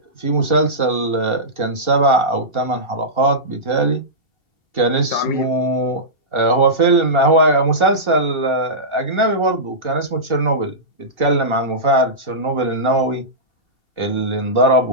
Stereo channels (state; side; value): late; right; 2.7 ms